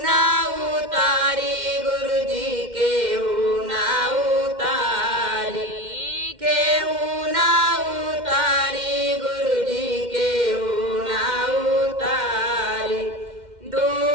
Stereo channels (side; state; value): left; late; 2.1 ms